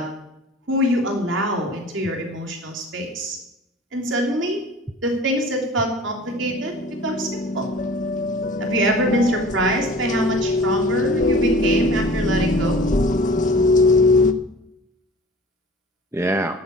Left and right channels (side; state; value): both; normal; correlation 0.44